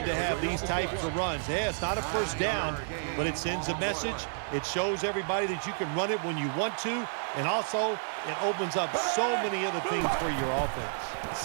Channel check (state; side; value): silent; left; digital silence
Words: to have these types of runs. Yeah, it's not a first down, but it sends a message. It shows everybody that you can run it when you want to, and also it opens up so many other things for your offense.